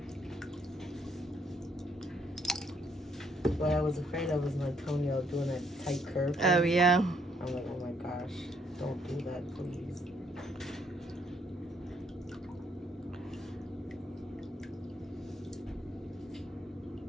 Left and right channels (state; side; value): normal; both; correlation 0.70